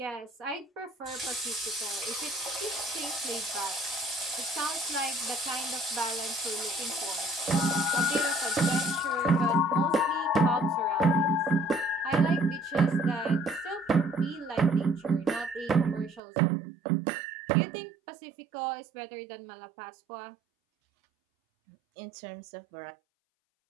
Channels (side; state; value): left; drops out; at 16.2 s